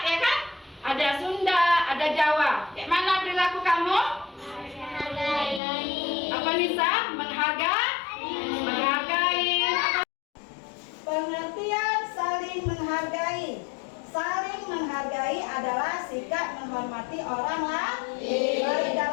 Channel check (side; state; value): right; drops out; at 5.6 s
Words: ya kan? Ada Sunda, ada Jawa. Kayak mana perilaku kamu? Apa Nisa? Menghargai. Pengertian saling menghargai. Saling menghargai adalah sikap menghormati orang lain, baik